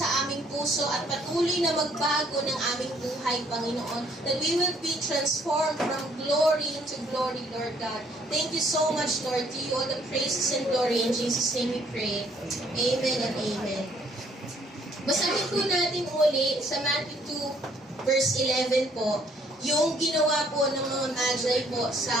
aming puso at patuloy na magbago ng aming buhay, Panginoon, that we will be transformed from glory to glory, Lord God. Thank you so much, Lord. To you all the praises and glory. In Jesus' name we pray. Amen and amen. Basahin po natin uli sa Matthew 2, verse 11 po, yung ginawa po ng mga magi po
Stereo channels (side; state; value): both; normal; correlation 0.65